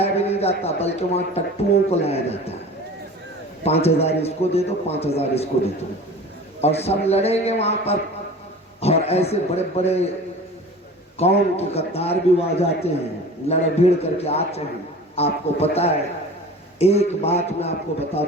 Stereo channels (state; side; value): normal; both; correlation 0.39